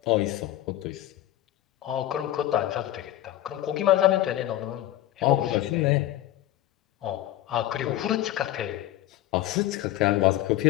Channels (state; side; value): quieter; right; 14.0 dB